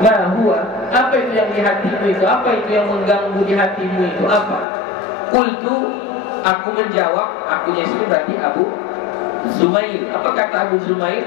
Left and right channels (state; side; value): drops out; right; at 4.7 s